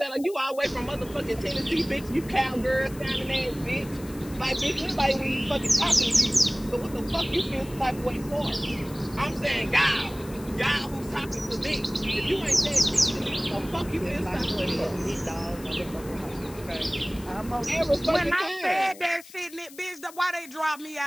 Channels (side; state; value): left; noise; hiss, 19 dB below the sound